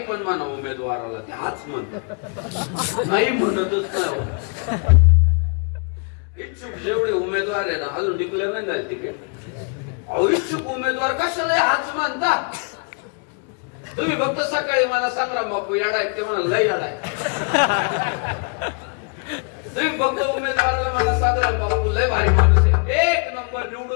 पण म्हणा उमेदवाराला, ते हाच म्हणतात, नाही म्हणतच नाही. इच्छुक जेवढे उमेदवार आहे ना, अजून डिक्लेअर नाही झाले तिकीट. अहो इच्छुक उमेदवार कशाला हाच म्हणता? तुम्ही फक्त सकाळी मला संग्राम बापू याडा आहे, ते म्हणा लय याडा आहे. तुम्ही फक्त उमेदवाराला मला संग्राम बापू लय भारी माणूस आहे, 1 नंबर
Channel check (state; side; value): quieter; right; 38.9 dB